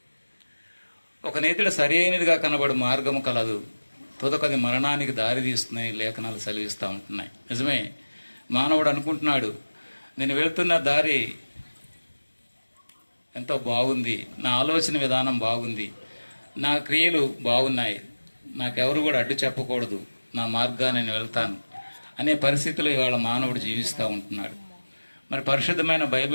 ఒక నేతిడ సరి అయినదిగా కనబడు మార్గము కలదు, తుదకది మరణానికి దారి తీస్తుందని లేఖనాలు సెలవిస్తూ ఉంటున్నాయి. నిజమే, మానవుడు అనుకుంటున్నాడు నేను వెళ్తున్న దారి ఎంతో బాగుంది, నా ఆలోచన విధానం బాగుంది, నా క్రియలు బాగున్నాయి, నాకెవరు కూడా అడ్డు చెప్పకూడదు, నా మార్గాన్ని నేను వెళ్తాను అనే పరిస్థితిలో ఇవాళ మానవుడు జీవిస్తూ ఉంటున్నాడు. మరి పరిశుద్ధమైన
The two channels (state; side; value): inverted; both; correlation -1.00